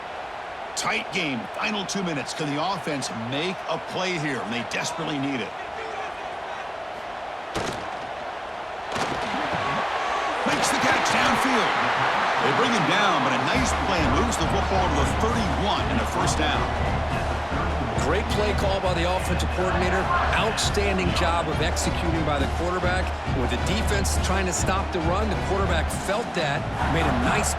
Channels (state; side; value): identical; both; correlation 1.00